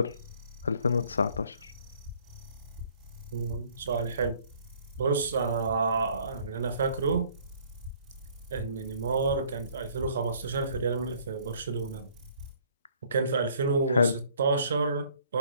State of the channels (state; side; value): inverted; both; correlation -0.59